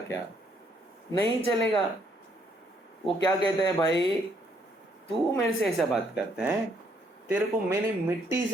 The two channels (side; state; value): both; normal; correlation 0.69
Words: क्या? नहीं चलेगा। वो क्या कहते हैं, भाई तू मेरे से ऐसा बात करता है, तेरे को मैंने मिट्टी